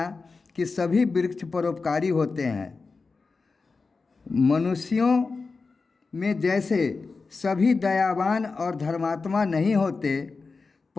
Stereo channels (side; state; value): right; quieter; 4.3 dB